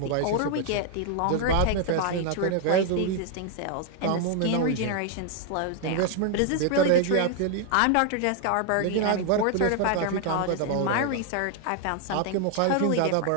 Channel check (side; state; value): both; different; correlation 0.00